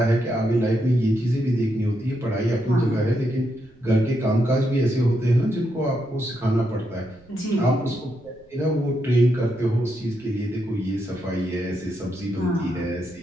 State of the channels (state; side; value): noise; right; rumble, 28 dB below the sound